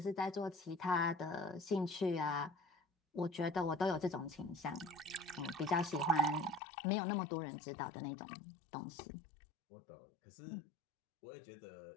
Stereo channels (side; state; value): right; drops out; at 6.6 s